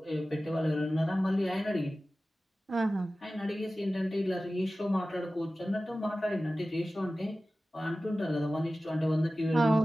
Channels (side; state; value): both; normal; correlation 0.96